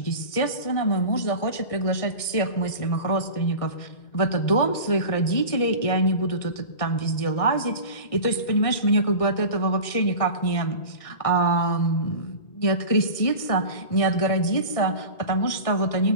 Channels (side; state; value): right; late; 1.6 ms